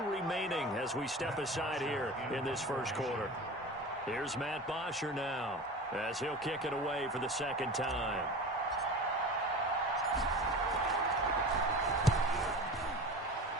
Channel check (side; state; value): both; normal; correlation 0.33